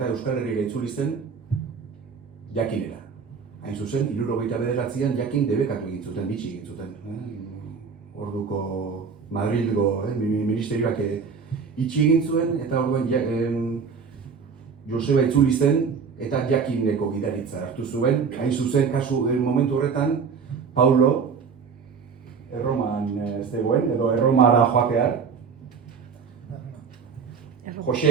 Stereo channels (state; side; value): quieter; left; 5.8 dB